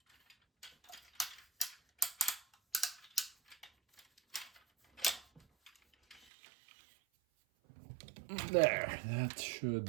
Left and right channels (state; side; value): drops out; left; at 6.2 s